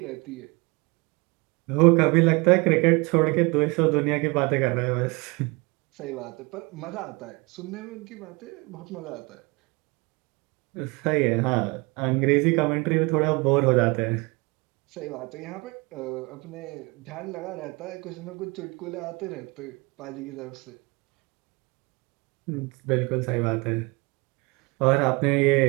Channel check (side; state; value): left; quieter; 27.1 dB